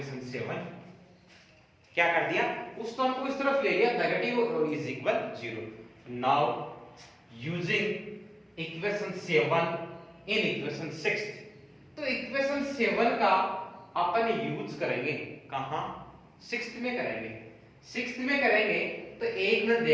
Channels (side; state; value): both; identical; correlation 1.00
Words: 7 क्या कर दिया? उस टर्म को इस तरफ ले लिया, negative is equal 0। Now using equation 7 in equation 6, तो इक्वेशन 7 का अपन यूज करेंगे कहां? 6th में करेंगे। 6th में करेंगे तो एक मिनट